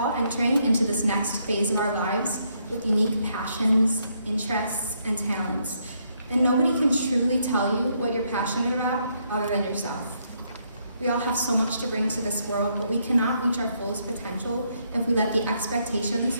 entering into this next phase of our lives with unique passions, interests, and talents, and nobody can truly tell you what you're passionate about other than yourself. We all have so much to bring to this world, but we cannot reach our fullest potential if we let the expectations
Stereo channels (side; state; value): both; inverted; correlation -0.74